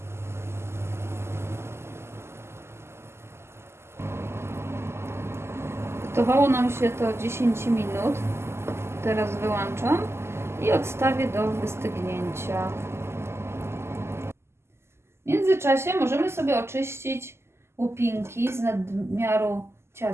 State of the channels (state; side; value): late; left; 0.12 ms